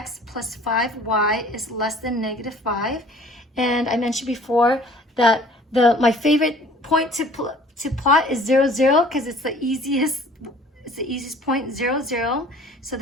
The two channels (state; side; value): normal; both; correlation 0.51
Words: plus 5y is less than negative 5. And I mentioned before that my favorite point to plot is 0, 0 because it's the easiest point, 0, 0. So